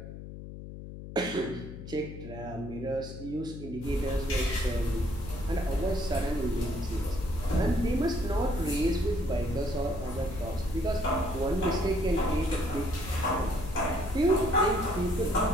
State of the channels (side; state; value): left; noise; hum, 11 dB below the sound